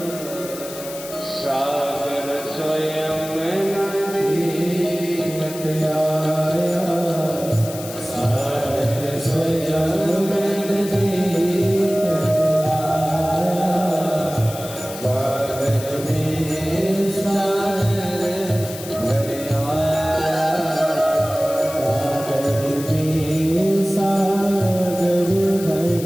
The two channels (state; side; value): noise; left; hiss, 13 dB below the sound